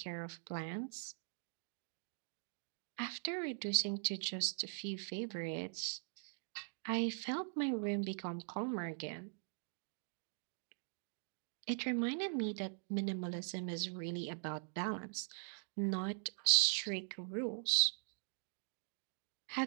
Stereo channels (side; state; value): left; silent; digital silence